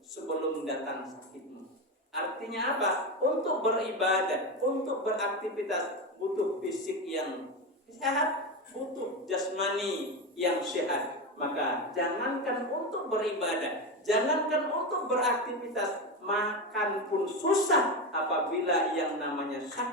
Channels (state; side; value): normal; both; correlation 0.16